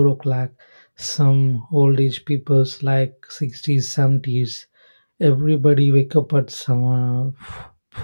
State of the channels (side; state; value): both; inverted; correlation -1.00